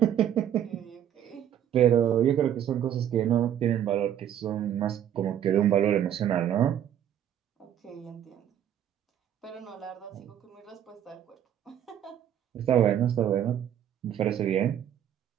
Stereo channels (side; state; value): left; quieter; 10.2 dB